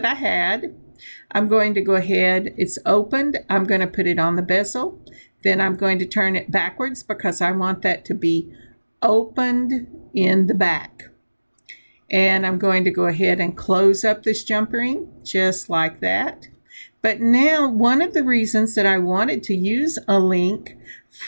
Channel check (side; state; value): both; inverted; correlation -1.00